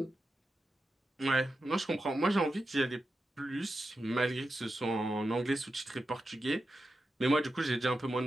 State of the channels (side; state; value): both; normal; correlation 0.90